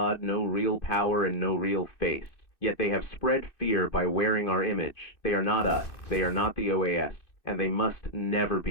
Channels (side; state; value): right; late; 2.6 ms